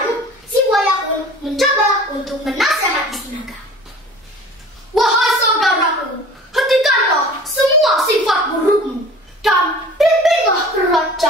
si Buaya pun mencoba untuk menasihati si Naga. Wahai saudaraku, hentikanlah semua sifat burukmu dan pimpinlah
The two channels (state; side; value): normal; both; correlation 0.44